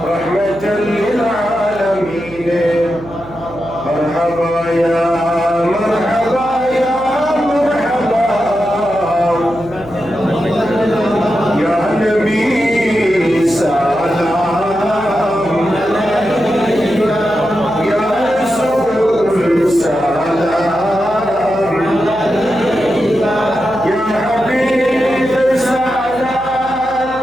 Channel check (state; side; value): noise; right; hum, 18 dB below the sound